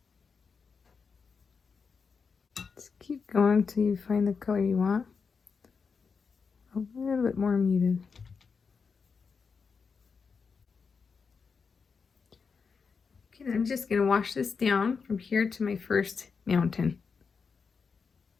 Just keep going until you find the color you want. A little bit more muted. Okay, I'm just going to wash this down from here to my first mountain.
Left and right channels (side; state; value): right; quieter; 5.4 dB